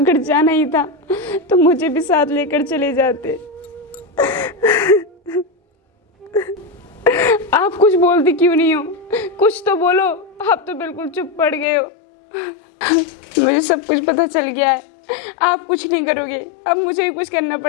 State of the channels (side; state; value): right; drops out; at 11.7 s